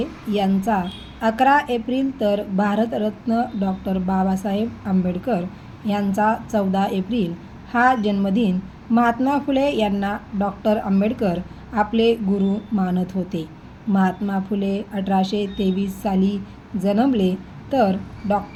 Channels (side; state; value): both; identical; correlation 1.00